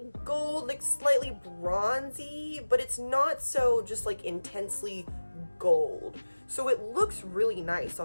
gold, like slightly bronzy, but it's not so just like intensely gold. So it looks really nice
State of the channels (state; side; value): inverted; both; correlation -1.00